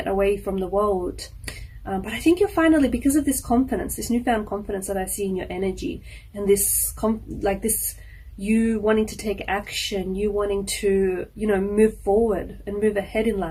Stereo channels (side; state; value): both; identical; correlation 1.00